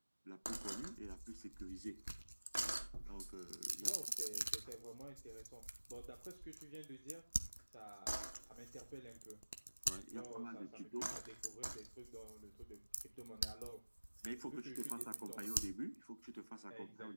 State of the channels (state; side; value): inverted; both; correlation -1.00